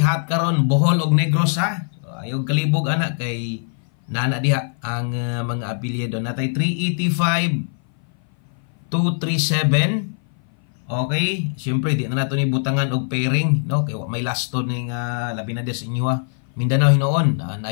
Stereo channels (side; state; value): right; silent; 57 dB below the other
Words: hot karon Bohol og Negros ha. So, ayog kalibog anak kay nana diha ang mga apelyido natay 385 237 okay siyempre di na nato ni butangan og pairing no kay may lasto ning labi na des inyo ha Mindanao hinoon. Na